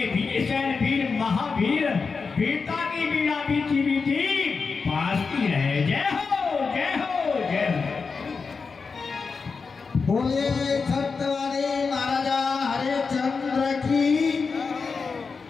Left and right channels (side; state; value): right; quieter; 4.9 dB